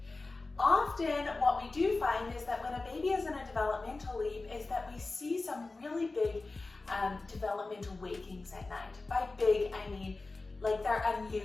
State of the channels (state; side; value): quieter; right; 3.4 dB